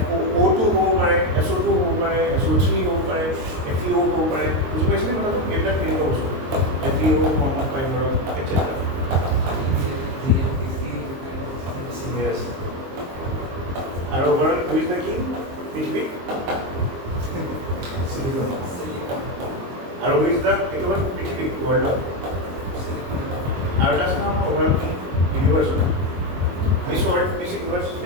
হ'ব পাৰে, SO2 হ'ব পাৰে, SO3 হ'ব পাৰে, FeO হ'ব পাৰে, বুজি পাইছেনে কথাটো? এইবিলাক কেনেকুৱা বস্তু FeO ফৰ্মত পায় ধৰক etc. Yes. আৰু ওভাৰ হুইজ দ্য কিং পৃথিৱী আৰু হুইজ দ্য এইটো হ'ল পৃথিৱী ৱৰ্ল্ডত আৰু এটা আছে নহয় আমাৰ over king universe miss world miss universe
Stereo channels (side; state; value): left; late; 22 ms